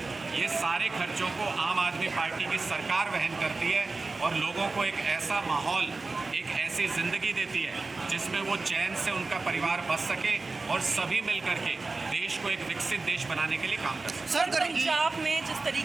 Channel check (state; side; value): quieter; left; 3.7 dB